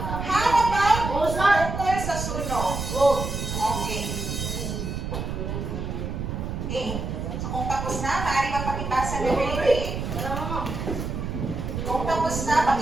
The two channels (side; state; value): right; noise; rumble, 4 dB below the sound